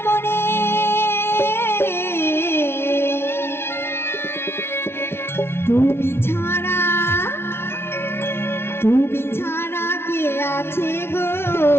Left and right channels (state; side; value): late; right; 0.12 ms